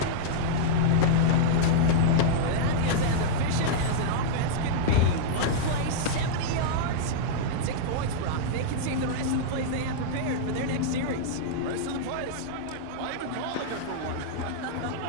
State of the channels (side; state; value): both; different; correlation -0.02